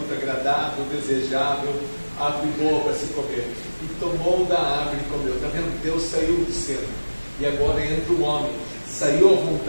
agradável, desejável, árvore boa para se comer. E tomou da árvore e comeu. Está vendo? Deus saiu do cena. E agora entra o homem. Saiu a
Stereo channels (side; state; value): both; inverted; correlation -1.00